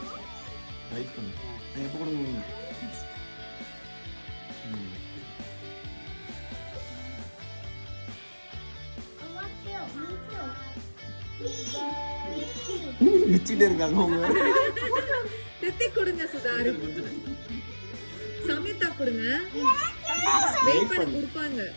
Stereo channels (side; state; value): both; inverted; correlation -1.00